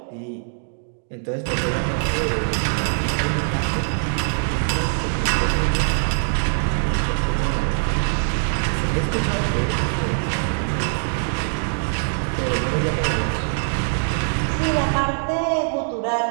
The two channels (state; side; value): silent; left; digital silence